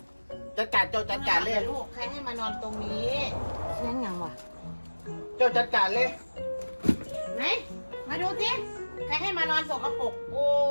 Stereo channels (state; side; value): inverted; both; correlation -1.00